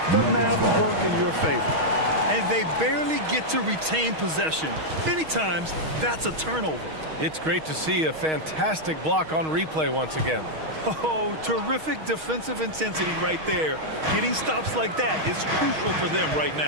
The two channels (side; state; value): left; late; 6.4 ms